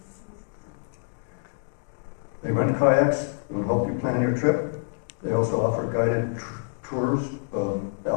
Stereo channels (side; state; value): right; silent; digital silence